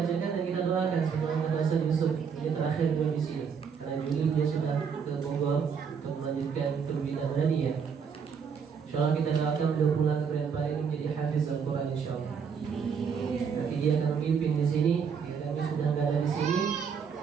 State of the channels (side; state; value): left; quieter; 6.5 dB